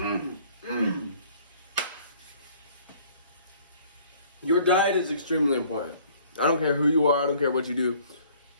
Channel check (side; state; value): both; inverted; correlation -0.56